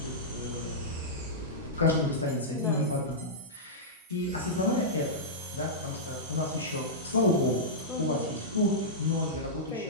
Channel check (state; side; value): normal; both; correlation -0.12